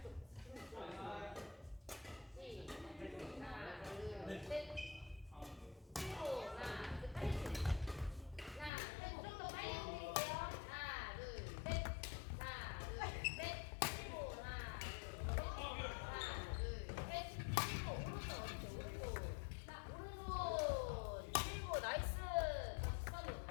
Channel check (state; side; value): drops out; right; at 8.7 s